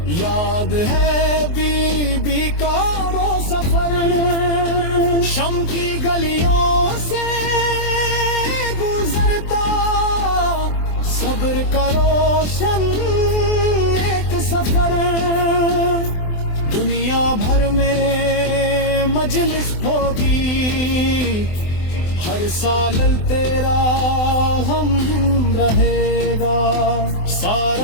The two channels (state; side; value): late; right; 24 ms